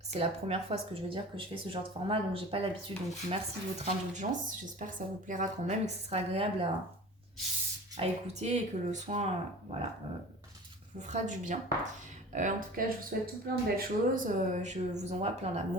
la première fois ce que je veux dire que je fais ce genre de format, donc j'ai pas l'habitude, donc merci de votre indulgence, j'espère que ça vous plaira quand même et que ce sera agréable à écouter et que le soin vous fera du bien. En tout cas je vous souhaite tout plein de belles choses, je vous envoie plein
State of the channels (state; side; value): normal; both; correlation 0.39